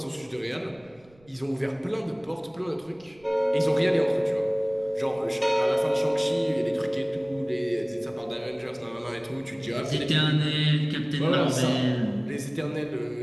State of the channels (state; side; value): noise; right; rumble, 29 dB below the sound